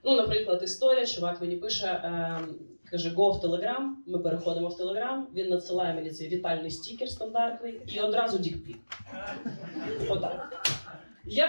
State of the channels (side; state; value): both; inverted; correlation -1.00